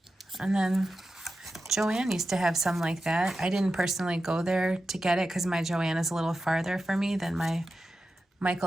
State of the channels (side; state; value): both; normal; correlation 0.91